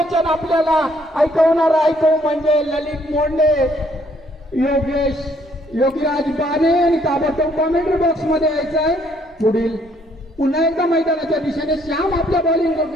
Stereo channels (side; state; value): both; normal; correlation 0.66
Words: आपल्याला ऐकवणार ऐकू म्हणजे ललित मोंडे, योगीराज बाने आणि ताबडतोब कॉमेंट्री बॉक्स मध्ये यायचं आहे. पुढील पुन्हा एकदा मैदानाच्या दिशेने श्याम आपल्या